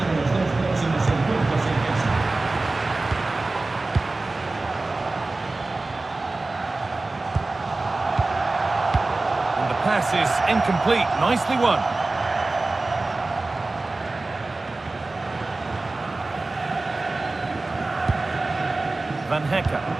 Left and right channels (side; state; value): left; quieter; 3.2 dB